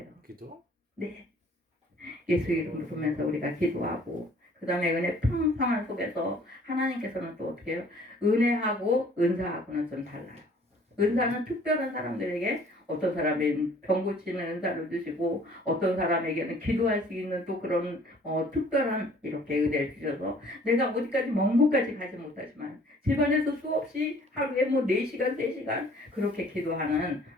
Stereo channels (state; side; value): normal; both; correlation 0.55